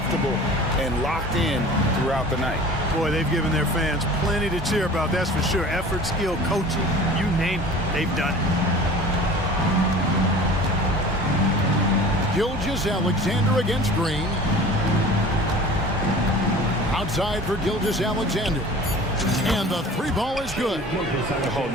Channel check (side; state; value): both; normal; correlation 0.42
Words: and locked in throughout the night. Boy, they've given their fans plenty to cheer about, that's for sure. Effort, skill, coaching, you name it, they've done it. Gilgeous-Alexander against Green. Outside for Gilgeous-Alexander. And the 3-ball is good. Oh,